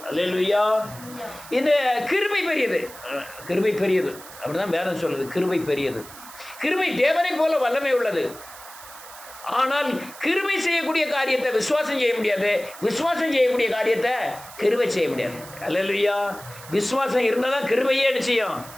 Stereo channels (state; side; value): noise; right; hiss, 17 dB below the sound